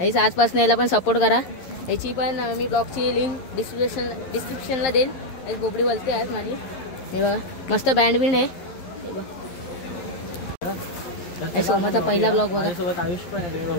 आईच आजपासून याला पण सपोर्ट करा। याची पण मी ब्लॉगची लिंक डिस्क्रिप्शनला देईन। एक बोबडी बोलते आज माझी। हे बघा मस्त बँड बिंड आहे। ओमाचा पहिला ब्लॉग बघा।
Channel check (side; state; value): right; late; 11 ms